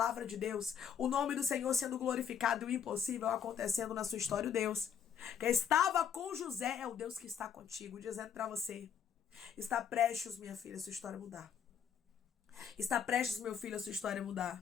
de Deus, o nome do Senhor sendo glorificado e o impossível acontecendo na sua história. O Deus que estava com José é o Deus que está contigo, dizendo para você, está prestes, minha filha, a sua história mudar. Está prestes, meu filho, a sua história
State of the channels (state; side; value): quieter; right; 8.1 dB